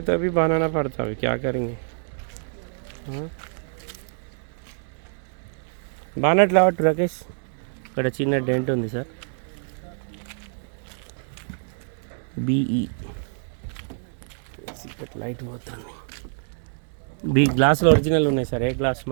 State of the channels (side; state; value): left; silent; digital silence